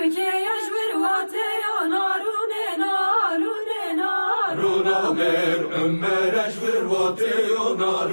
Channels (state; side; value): inverted; both; correlation -1.00